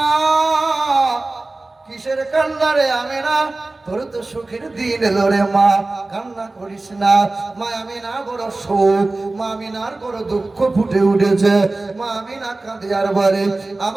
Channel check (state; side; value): quieter; left; 3.1 dB